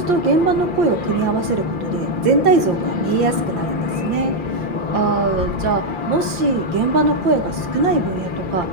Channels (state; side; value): late; left; 5.8 ms